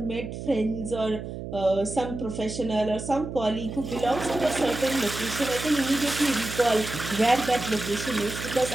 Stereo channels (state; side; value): noise; right; hum, 8 dB below the sound